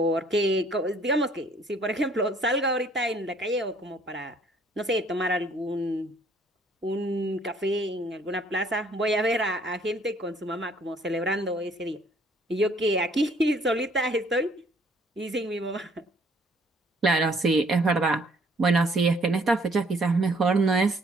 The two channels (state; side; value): normal; both; correlation 0.61